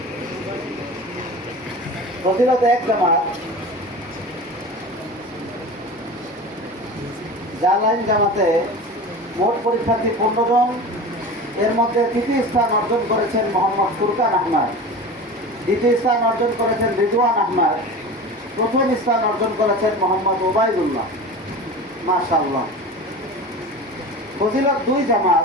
ফজিলত এক জামাত জালাইন জামাতে মোট পরীক্ষার্থী 15 জন। এর মধ্যে তৃতীয় স্থান অর্জন করেছেন মোহাম্মদ ফুরকান আহমদ। দ্বিতীয় স্থান অর্জন করেছেন রিজওয়ান আহমদ। প্রথম স্থান অর্জন করেছেন মোহাম্মদ ওবায়দুল্লাহ। মাশাআল্লাহ। ফজিলত 2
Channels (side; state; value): both; normal; correlation 0.32